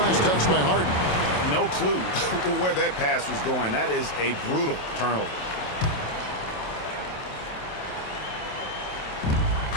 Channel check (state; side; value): late; right; 27 ms